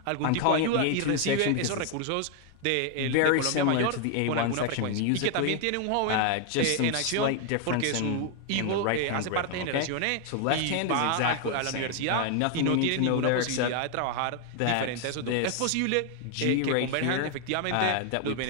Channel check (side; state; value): both; different; correlation 0.00